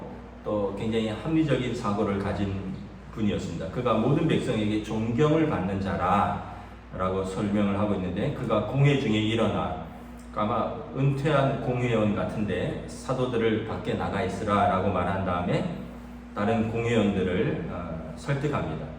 또 굉장히 합리적인 사고를 가진 분이었습니다. 그가 모든 백성에게 존경을 받는 자라라고 설명을 하고 있는데 그가 공회 중에 일어나 아마 은퇴한 공회원 같은데 사도들을 밖에 나가 있으라라고 말한 다음에 다른 공회원들을 설득합니다.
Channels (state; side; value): identical; both; correlation 1.00